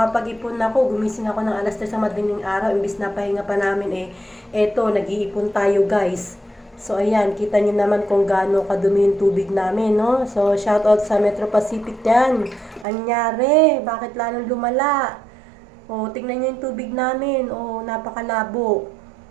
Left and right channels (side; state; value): left; drops out; at 12.9 s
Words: ako. Gumising ako ng alas 3 sa madaling araw. Imbis na pahinga pa namin eto, nag-iipon tayo guys. So, ayan. Kita nyo naman kung gaano kadumi yung tubig namin, no? So, shout out sa Metro Pacific yan. Anyari? Bakit lalong lumala? O, tingnan nyo yung tubig namin. O, napakalabo.